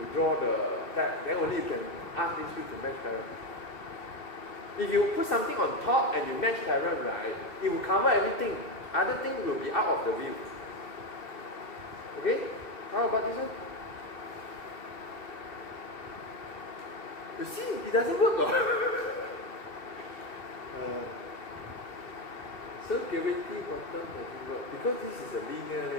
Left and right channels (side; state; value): right; late; 2.6 ms